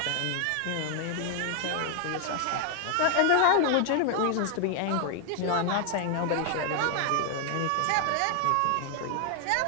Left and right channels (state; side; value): different; both; correlation 0.00